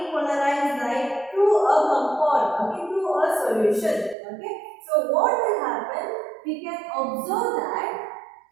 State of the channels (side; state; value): left; drops out; at 4.2 s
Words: polarized light through a compound, okay, through a solution. Okay, so what will happen? We can observe that.